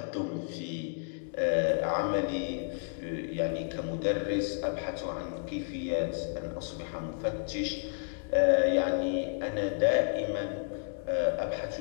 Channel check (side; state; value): right; silent; digital silence